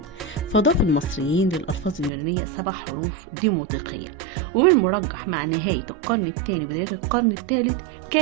فضاف المصريين للألفاظ اليونانية 7 حروف ديموطيقية. ومن المرجح مع نهاية القرن الثاني بداية القرن الثالث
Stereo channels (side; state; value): left; drops out; at 2.1 s